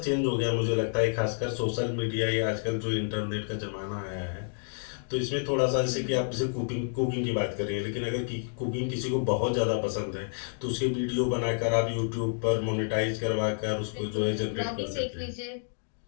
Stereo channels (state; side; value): silent; right; digital silence